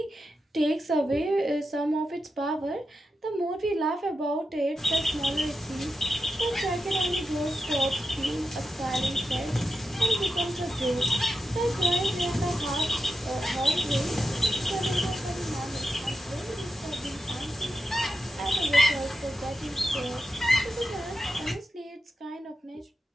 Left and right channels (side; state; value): both; normal; correlation 0.88